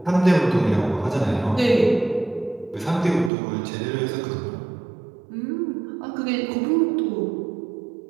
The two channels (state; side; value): drops out; left; at 3.3 s